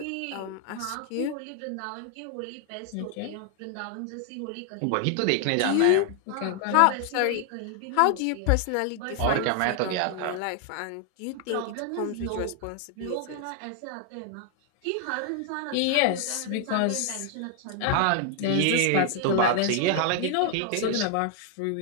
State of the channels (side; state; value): both; different; correlation 0.00